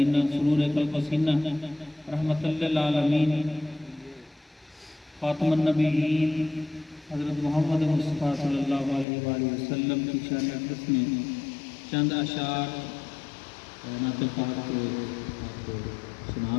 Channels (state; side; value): drops out; right; at 9.1 s